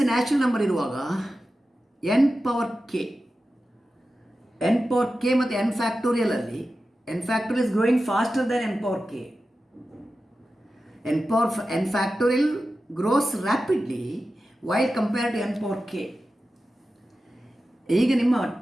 a natural number ಇರುವಾಗ n power k ಮತ್ತು n factorial ಅಲ್ಲಿ n factorial is growing faster than n power k. n factorial grows rapidly while compared to n power k. ಈಗ ನಿಮ್ಮ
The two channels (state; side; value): normal; both; correlation 0.93